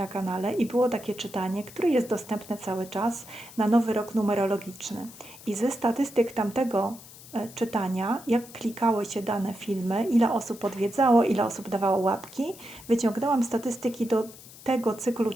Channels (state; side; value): noise; left; hiss, 19 dB below the sound